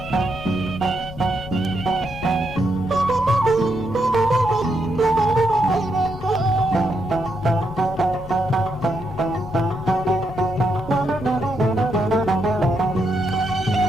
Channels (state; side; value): noise; left; rumble, 19 dB below the sound